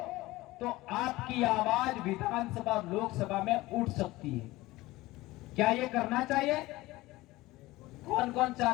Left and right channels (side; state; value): right; quieter; 19.0 dB